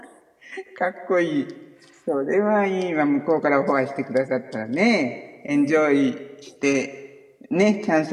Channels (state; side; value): identical; both; correlation 1.00